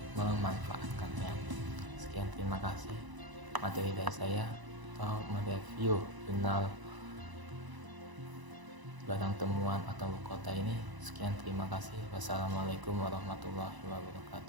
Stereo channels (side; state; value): left; late; 1.0 ms